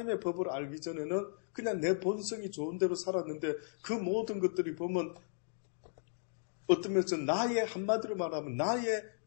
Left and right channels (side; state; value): right; silent; digital silence